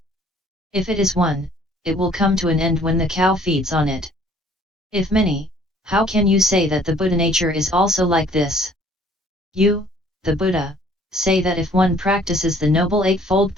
If it is one, it will come to an end when the cow feeds on it. If many, how can you say that the Buddha nature is also like this? You, the Buddha, say that if one practices the Noble Eightfold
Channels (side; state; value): both; normal; correlation 0.57